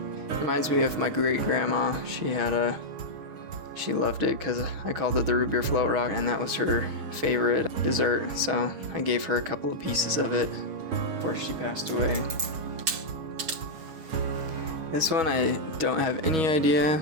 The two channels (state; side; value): late; left; 6.6 ms